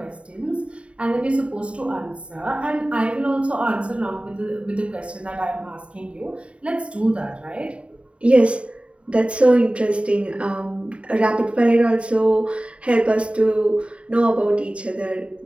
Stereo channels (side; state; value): left; late; 0.061 ms